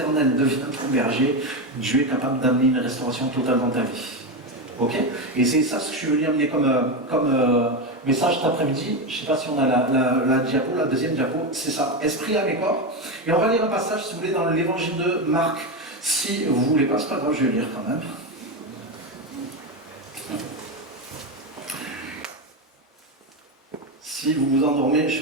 devient ton berger, Dieu est capable d'amener une restauration totale dans ta vie. Ok? Et c'est ça ce que je veux lui amener comme message cet après-midi. Je ne sais pas si on a la diapo, la deuxième diapo, c'est ça, esprit, âme et corps. Et on va lire un passage, si vous voulez, dans l'évangile de Marc. Si vous ne voulez pas, c'est pas grave, je vais lire quand même. Si vous vous endormez, je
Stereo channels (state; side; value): normal; both; correlation 0.13